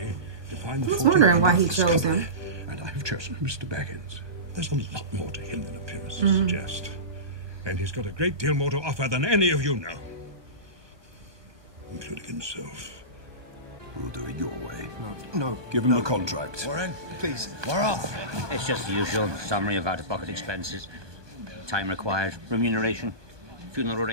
to find the I was 14 wondering why he members chose company, him. and I have chosen Mr. Baggins. There's a lot more to him than appearances suggest. And he's got a great deal more to offer than any of you know. Including himself. We'll do it your way. No. Give him the contract. Warren, please, we're off. It's just the usual summary of out-of-pocket expenses. Time required, remuneration, funeral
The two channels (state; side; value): late; left; 1.2 ms